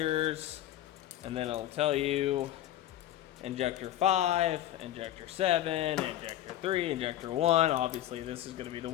and then it'll tell you injector 5, injector 7, injector 3, injector 1. Obviously this is going to be the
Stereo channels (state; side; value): quieter; right; 12.9 dB